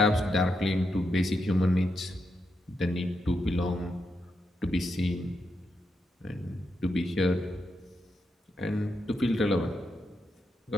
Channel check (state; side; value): normal; both; correlation 0.84